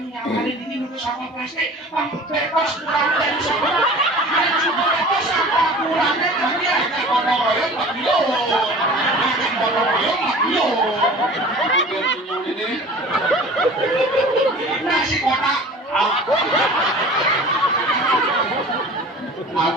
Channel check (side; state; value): both; normal; correlation 0.41